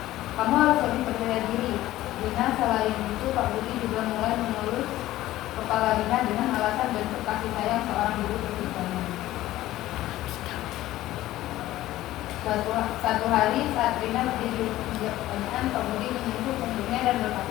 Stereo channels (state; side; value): quieter; right; 15.4 dB